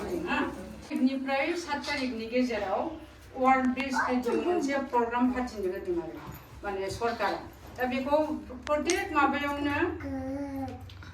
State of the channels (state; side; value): identical; both; correlation 1.00